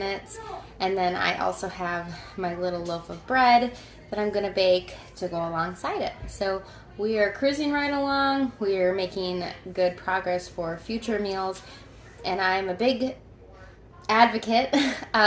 And then I also have my little loaf of bread that I'm gonna bake to go alongside it. So we are cruising right along. We are making good progress for future meals. And I'm a big advocate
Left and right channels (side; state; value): both; identical; correlation 1.00